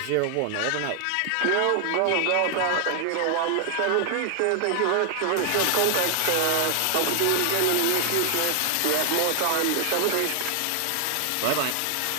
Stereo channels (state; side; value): different; both; correlation 0.00